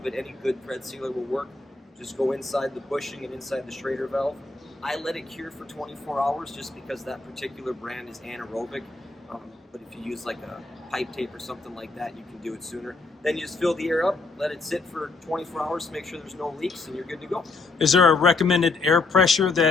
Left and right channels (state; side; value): quieter; right; 3.6 dB